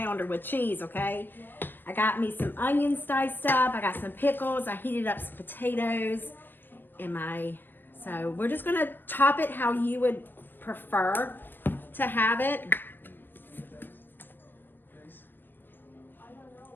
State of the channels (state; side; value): late; right; 0.096 ms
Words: with cheese, okay? I got me some onions diced up. I got some pickles. I heated up some potatoes. So we're just gonna top it how you would prefer to have it.